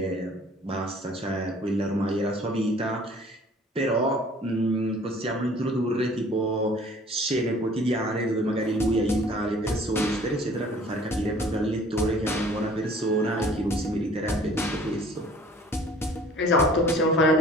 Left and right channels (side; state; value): both; normal; correlation 0.51